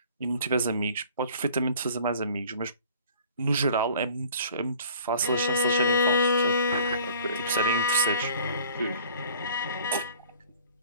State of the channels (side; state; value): both; inverted; correlation -0.50